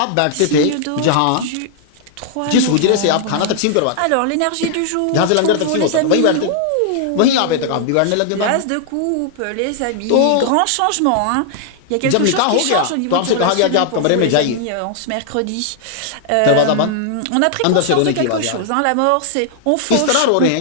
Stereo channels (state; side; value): different; both; correlation -0.01